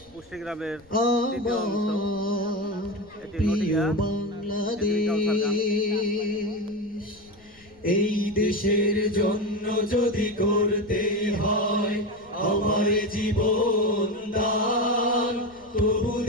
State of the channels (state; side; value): noise; left; rumble, 29 dB below the sound